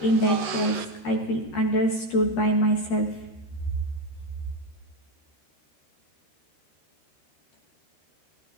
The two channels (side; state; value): right; late; 13 ms